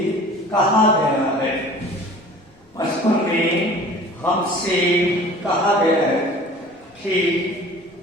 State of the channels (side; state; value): both; normal; correlation 0.45